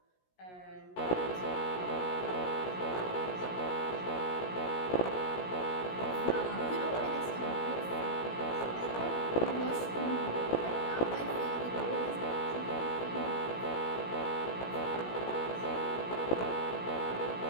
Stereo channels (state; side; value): late; right; 17 ms